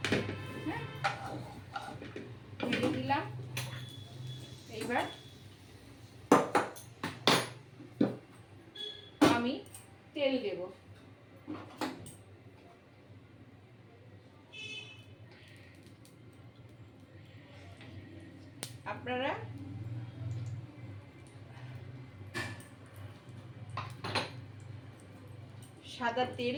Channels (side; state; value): both; identical; correlation 1.00